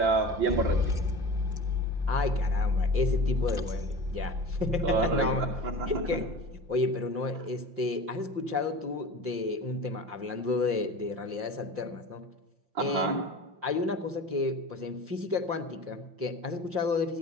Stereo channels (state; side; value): late; left; 5.7 ms